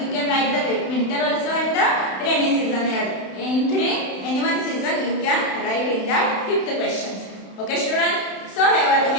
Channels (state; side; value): late; right; 31 ms